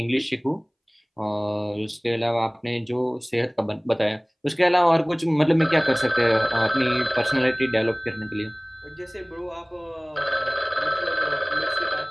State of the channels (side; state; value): both; identical; correlation 1.00